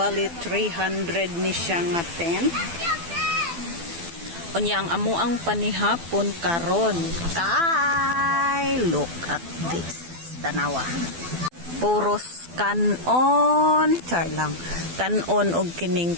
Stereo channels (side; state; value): left; late; 12 ms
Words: 300 ni siya nga tent. Unya ang amuang panihapon karon. Kay look at this. Tanawa. Puros kanon. Char lang. Kanon og kining